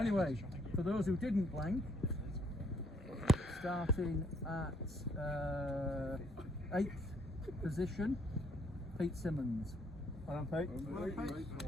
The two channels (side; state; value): both; normal; correlation 0.67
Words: for those who didn't blank, starting at 8th position, Pete Simmons. Well done, Pete.